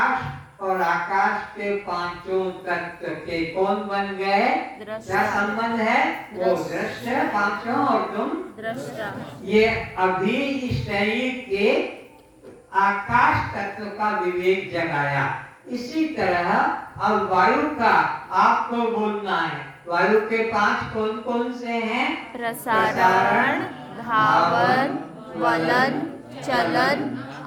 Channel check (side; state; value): both; identical; correlation 1.00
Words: और आकाश के पांचों तत्व के कौन बन गए? दृष्टा। क्या संबंध है? वो दृश्य पांचों और तुम दृष्टा। ये अभी इस शरीर के आकाश तत्व का विवेक जगाया। इसी तरह अब वायु का आपको बोलना है। वायु के पांच कौन कौन से हैं? प्रसारण, धावन, वलन, चलन,